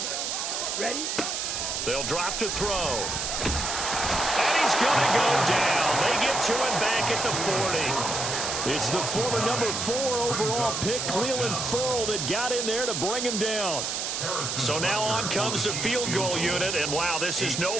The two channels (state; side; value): noise; right; hiss, 2 dB below the sound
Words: Ready? They'll drop to throw. And he's going to go down. They get to him back at the 40. It's the former number 4 overall pick, Cleveland Ferrell, that got in there to bring him down. So now on comes the field goal unit, and wow, this is no